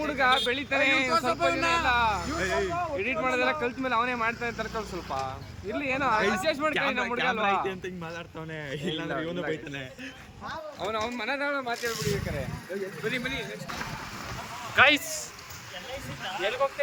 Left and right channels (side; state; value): both; identical; correlation 1.00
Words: ಹುಡುಗ ಬೆಳಿತಾನೆ ಸ್ವಲ್ಪ ಎಡಿಟ್ ಮಾಡೋದೆಲ್ಲ ಕಲ್ತ ಮೇಲೆ ಅವನೇ ಮಾಡ್ತಾನೆ ತರ್ಕೊಳ್ಳಿ ಸ್ವಲ್ಪ ಇರ್ಲಿ. ಏನೋ ಅಡ್ಜಸ್ಟ್ ಮಾಡ್ಕೊಳ್ಳಿ, ನಮ್ಮ ಹುಡುಗ ಅಲ್ವಾ ಅಂತ ಹಿಂಗ್ ಮಾತಾಡ್ತಾವನೆ, ಇಲ್ಲಾಂದ್ರೆ ಇವನು ಬೈತಾನೆ. ಅವನ ಮನದಾಳ ಮಾತಾಡ್ಬಿಡಿ ಬೇಕಾರೆ. ಬನ್ನಿ ಗೈಸ್, ಎಲ್ಲಿಗೆ ಹೋಗ್ತಾ